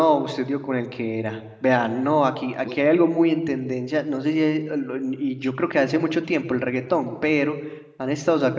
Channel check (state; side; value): identical; both; correlation 1.00